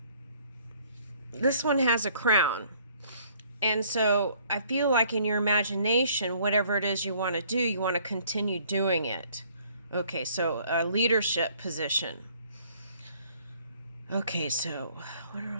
this one has a crown. And so I feel like in your imagination, whatever it is you want to do, you want to continue doing it. Okay, so a leadership position. Okay, so what are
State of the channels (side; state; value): both; inverted; correlation -0.60